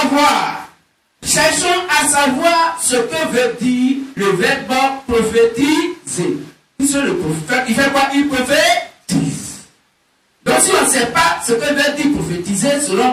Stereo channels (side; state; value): both; identical; correlation 1.00